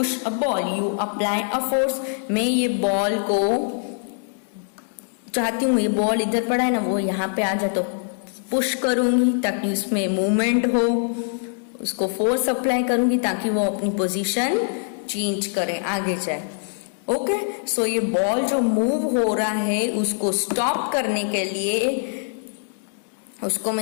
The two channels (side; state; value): right; silent; digital silence